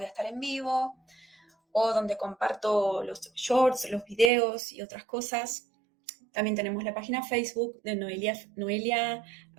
a estar en vivo o donde comparto los shorts, los videos y otras cosas. También tenemos la página Facebook de Noelia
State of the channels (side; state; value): left; drops out; at 4.3 s